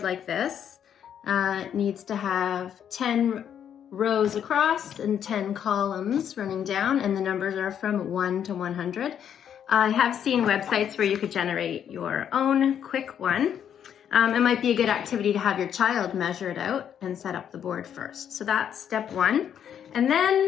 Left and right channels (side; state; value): right; quieter; 9.0 dB